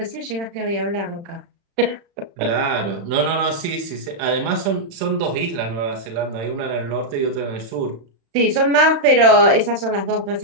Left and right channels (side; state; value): left; late; 35 ms